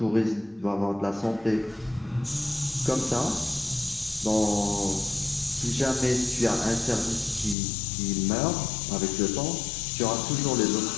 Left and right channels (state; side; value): drops out; right; at 7.6 s